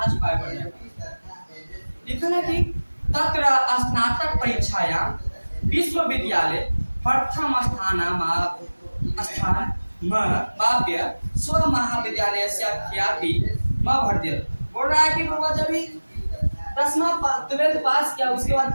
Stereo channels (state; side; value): inverted; both; correlation -1.00